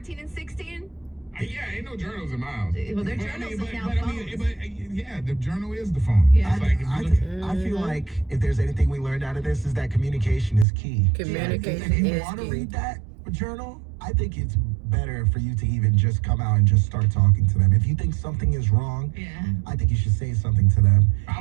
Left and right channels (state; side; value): drops out; left; at 10.7 s